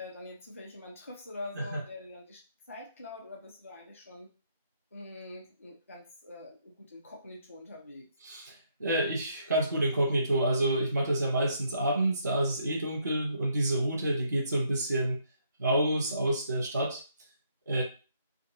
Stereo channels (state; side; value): inverted; both; correlation -0.72